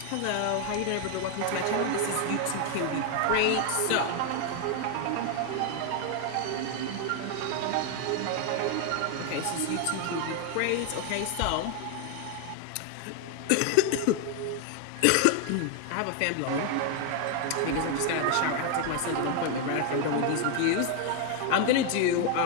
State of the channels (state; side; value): different; both; correlation 0.01